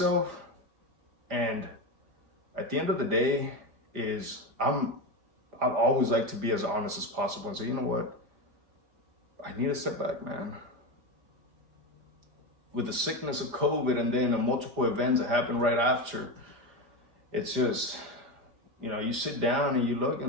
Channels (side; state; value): left; late; 4.9 ms